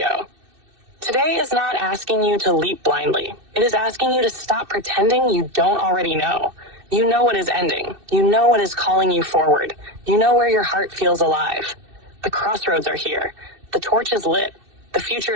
Today is not asking you to leap blindly. It is asking you to stop pretending you don't already know. You know what is ending. You know what is calling you forward. You know where your heart feels alive. The crossroads are here. The torch is lit. The future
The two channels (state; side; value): late; left; 2.6 ms